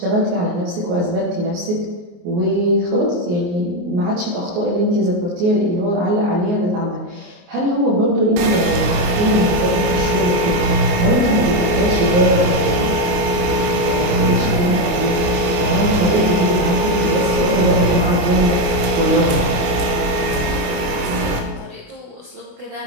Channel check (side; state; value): left; late; 29 ms